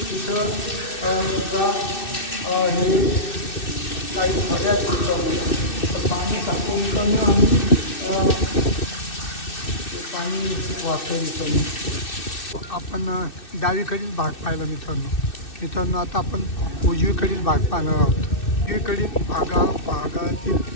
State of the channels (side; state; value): right; late; 2.6 ms